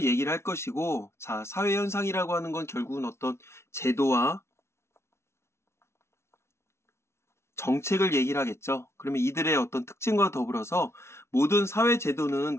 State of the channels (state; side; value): late; right; 0.13 ms